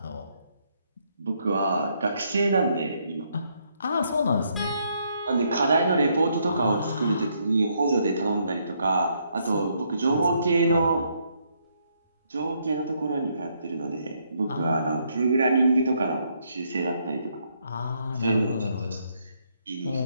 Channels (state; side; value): inverted; both; correlation -0.73